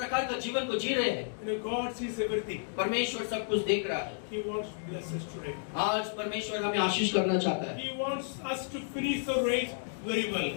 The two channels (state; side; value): silent; right; digital silence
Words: का जीवन को जी रहे हैं? You know, God sees everything. परमेश्वर सब कुछ देख रहा है। He wants to bless us today. आज परमेश्वर हमें आशीष करना चाहता है। He wants us to finish the race very well.